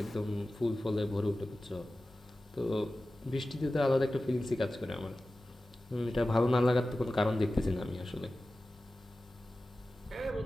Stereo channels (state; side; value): normal; both; correlation 0.95